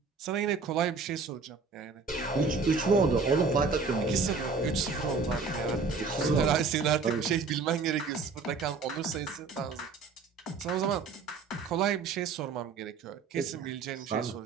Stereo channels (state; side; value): quieter; left; 4.7 dB